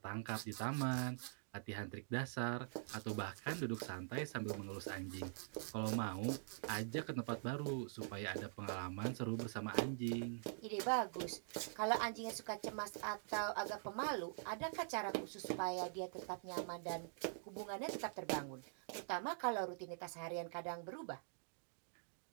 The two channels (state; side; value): silent; left; digital silence